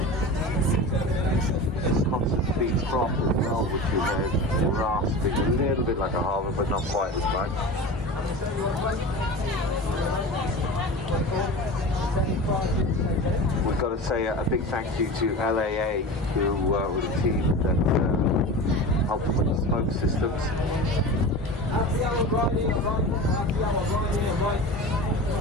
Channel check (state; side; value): normal; both; correlation 0.31